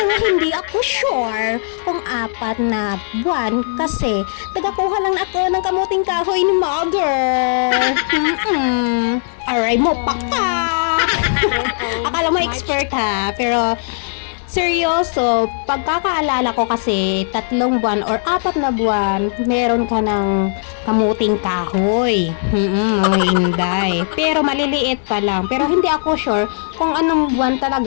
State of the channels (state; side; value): silent; right; digital silence